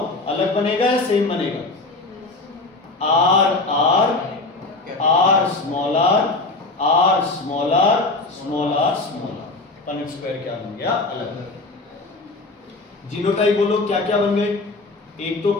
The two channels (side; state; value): right; quieter; 3.2 dB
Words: अलग बनेगा या सेम बनेगा, R R R small R R small R small R small R. Punnett square क्या बन गया, अलग। जीनोटाइप बोलो क्या क्या बन गए, एक तो